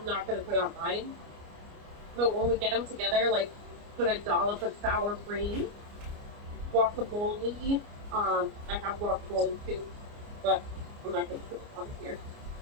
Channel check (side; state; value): left; late; 29 ms